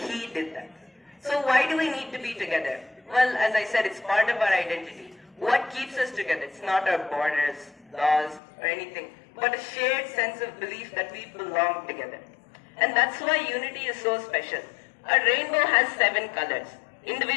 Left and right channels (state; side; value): drops out; right; at 8.4 s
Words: did that. So why do we need to be together? Well, as I said, it's part of our identity. What keeps us together? It's not our borders, laws, or anything, but a shared sense of belief that we belong together. And that's why unity is so special. A rainbow has 7 colors.